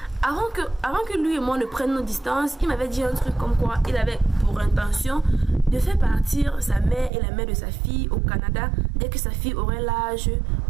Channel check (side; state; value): left; drops out; at 7.1 s